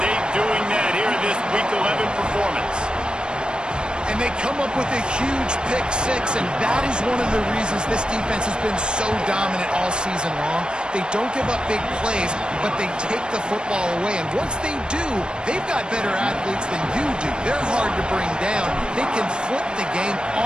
doing that here in this Week 11 performance. And they come up with a huge pick six, and that is one of the reasons this defense has been so dominant all season long. They don't give up big plays, but they take the football away. And once they do, they've got better athletes than you do. They're hard to bring down. They can flip the game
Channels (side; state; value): left; late; 0.052 ms